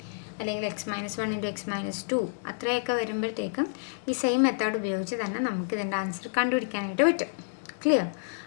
അല്ലെങ്കിൽ x-1 × x-2 അത്രയൊക്കെ വരുമ്പോഴത്തേക്കും ഈ സെയിം മെത്തേഡ് ഉപയോഗിച്ച് തന്നെ നമുക്ക് ഇതിൻ്റെ ആൻസർ കണ്ടുപിടിക്കാനായിട്ട് പറ്റും. ക്ലിയർ?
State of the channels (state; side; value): silent; right; digital silence